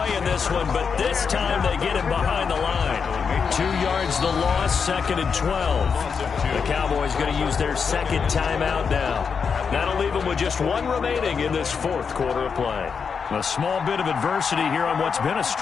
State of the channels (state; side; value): quieter; right; 6.0 dB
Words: in this one, but this time they get him behind the line. 2 yards the loss, 2nd and 12. The Cowboys going to use their 2nd timeout now. That'll leave them with just 1 remaining in this 4th quarter of play. A small bit of adversity here on what's been a